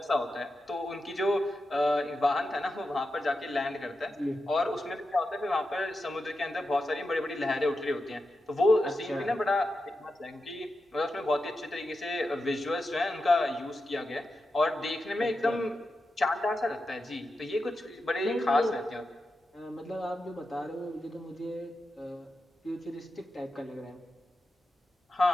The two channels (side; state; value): both; normal; correlation 0.89